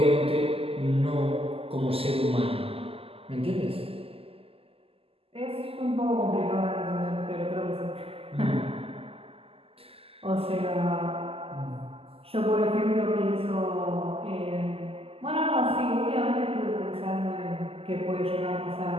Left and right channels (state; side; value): late; left; 0.28 ms